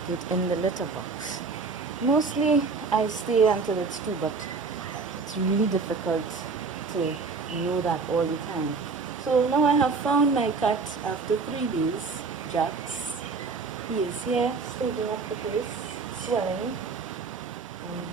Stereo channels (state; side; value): quieter; left; 4.6 dB